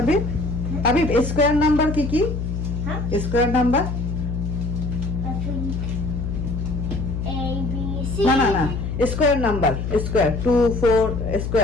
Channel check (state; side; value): noise; left; hum, 3 dB below the sound